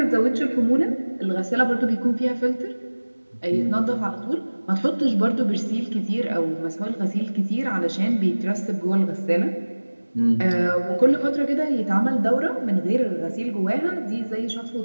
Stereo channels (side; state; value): both; inverted; correlation -1.00